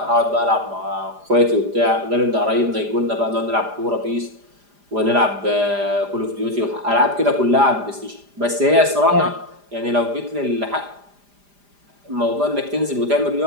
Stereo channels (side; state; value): left; late; 4.9 ms